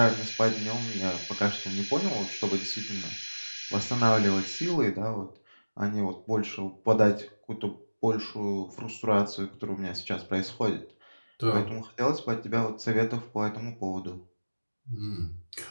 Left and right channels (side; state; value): both; inverted; correlation -1.00